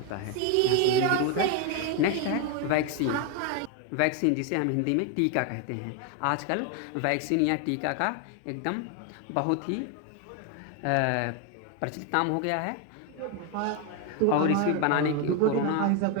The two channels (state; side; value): different; both; correlation 0.01